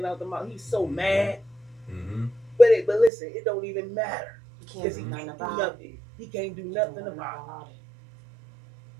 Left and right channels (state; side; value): drops out; left; at 3.1 s